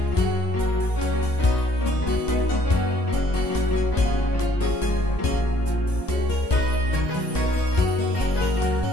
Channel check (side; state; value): right; late; 1.2 ms